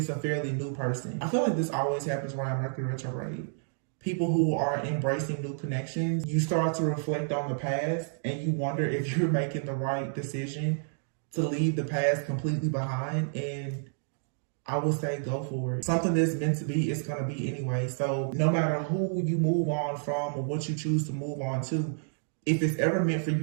a fairly new person. I feel like this always happens around Mercury retrograde. People who are embracing new connections, you start to reflect on the past and you wonder if you're making the right decision to leave the past completely behind. And I would say go for it. Something that's meant to be, it's going to be anyway. So no matter who you move on from or what you choose to move on to, if it's ever meant for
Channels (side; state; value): left; silent; digital silence